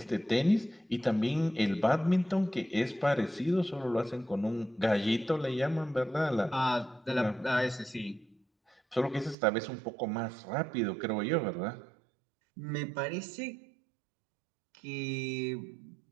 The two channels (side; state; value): left; drops out; at 9.3 s